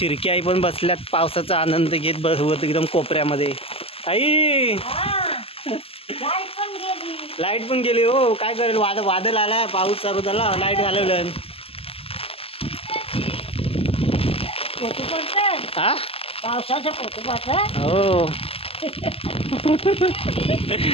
आई पण बसल्यात पावसाचा आनंद घेत बसवत एकदम कोपऱ्यामध्ये. आई लाईट पण गेली हो, काय करेल? वादळ आलाय, पाऊस चालू झाला, लाईट घालवलं. हा हो.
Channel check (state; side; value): late; right; 0.28 ms